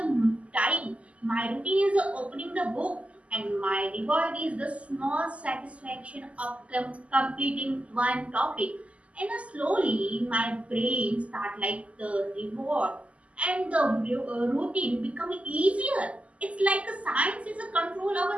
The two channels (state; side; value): late; left; 0.064 ms